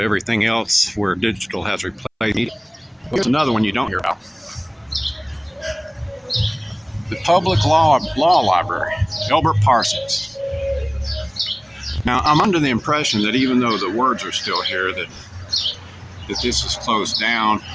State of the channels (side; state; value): both; identical; correlation 1.00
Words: else where digital has replaced media. Here's another one you don't hear about. The Public Law Library, Elbert Parsons. Now, I'm under the impression that even though the words are still here, that this is closed down